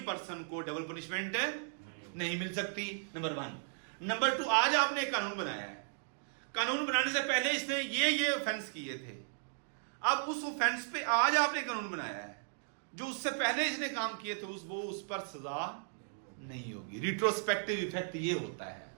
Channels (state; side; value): silent; left; digital silence